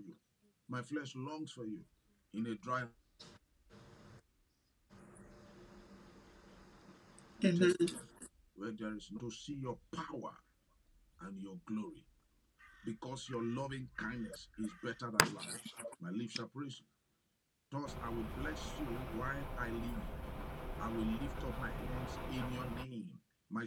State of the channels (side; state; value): both; identical; correlation 1.00